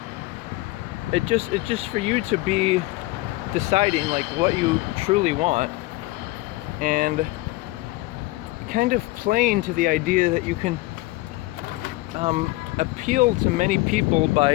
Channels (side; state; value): right; quieter; 20.1 dB